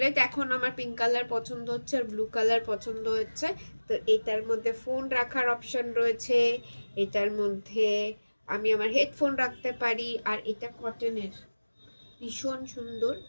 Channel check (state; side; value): inverted; both; correlation -1.00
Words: এখন আমার পিঙ্ক কালার পছন্দ হচ্ছে আর ব্লু কালার পছন্দ হচ্ছে। তো এটার মধ্যে ফোন রাখার অপশন রয়েছে, এটার মধ্যে আমি আমার হেডফোন রাখতে পারি, আর এটা কটনের, ভীষণ সুন্দর।